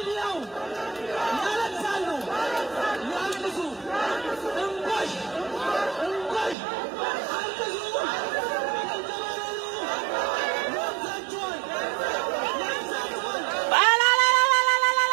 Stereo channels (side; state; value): left; drops out; at 6.6 s